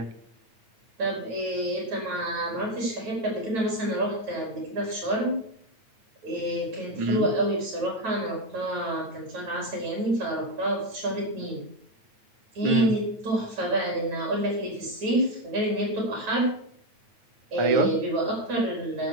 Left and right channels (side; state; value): left; late; 9.1 ms